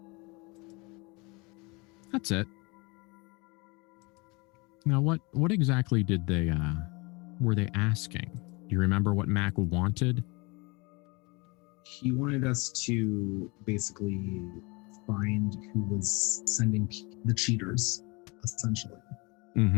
That's it. Now, what exactly did they were they asking? Do you remember what Mac wanted? He wanted us to basically find who was sending the cheaters, essentially.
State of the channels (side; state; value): right; quieter; 27.5 dB